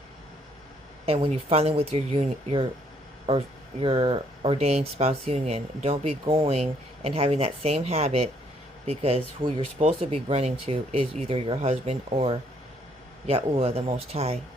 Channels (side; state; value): both; normal; correlation 0.67